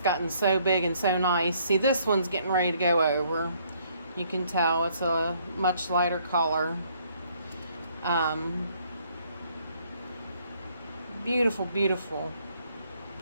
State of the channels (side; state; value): both; inverted; correlation -0.66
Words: so big and so nice. See, this one's getting ready to go over. You can tell it's a much lighter color. Beautiful, beautiful.